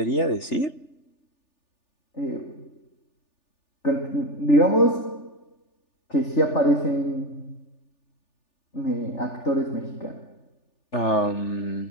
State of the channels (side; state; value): right; late; 3.4 ms